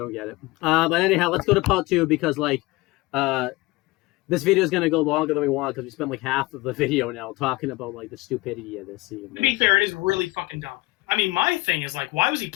get it. But anyhow, let's go to part 2 because like. This video is going to go longer than we want because we spent like half of the video now talking about like the stupidity of this scene. To be fair, it is really fucking dumb. I mean, my thing is like, why was he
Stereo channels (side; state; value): right; quieter; 21.3 dB